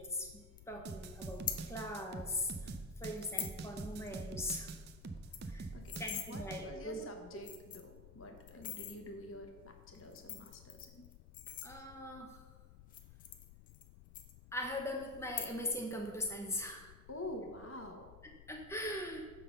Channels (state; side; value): noise; left; rumble, 16 dB below the sound